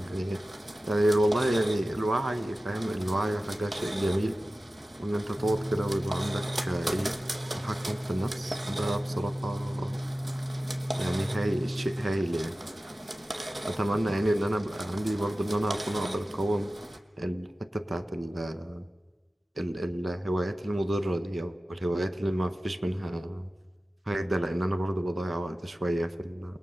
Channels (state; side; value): normal; both; correlation 0.95